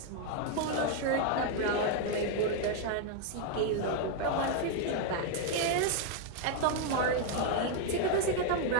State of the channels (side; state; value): both; different; correlation 0.00